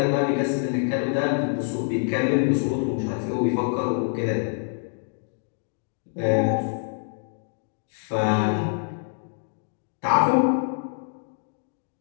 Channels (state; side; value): silent; right; 61 dB below the other